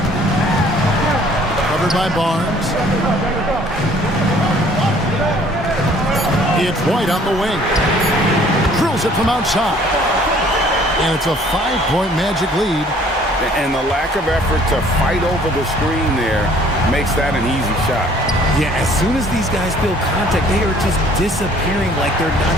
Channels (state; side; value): normal; both; correlation 0.56